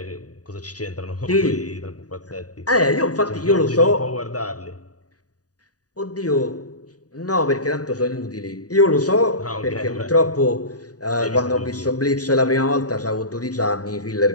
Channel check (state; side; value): late; right; 0.68 ms